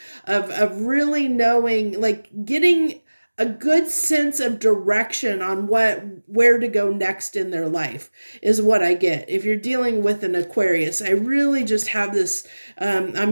of really knowing, like getting a good sense of direction on where to go next in their life is what I get. If you're dealing with an Aquarius, I really just have this,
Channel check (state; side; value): inverted; both; correlation -1.00